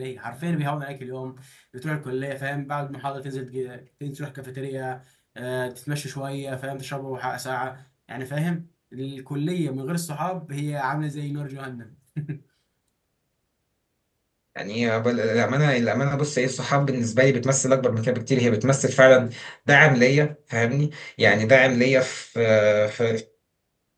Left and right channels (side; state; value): both; identical; correlation 1.00